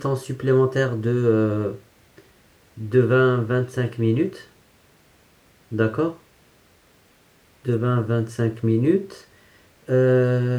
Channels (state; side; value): identical; both; correlation 1.00